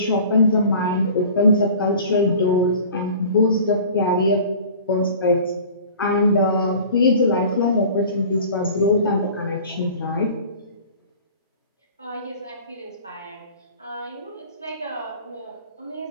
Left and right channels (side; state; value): both; inverted; correlation -0.43